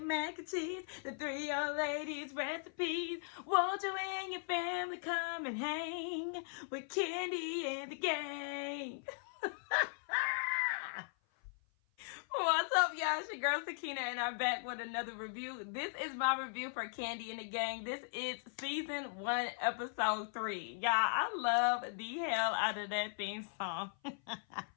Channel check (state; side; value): silent; right; 52 dB below the other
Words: mac and cheese, the three old ladies' recipes. Won't you and your family come and hang with Kandi and the gang? What's up, y'all? It's your girl Sakina, and I'm back with another review. This is my review for Kandi and the Gang. This is season 1, episode 3. Y'all, I love the hell out of that theme song.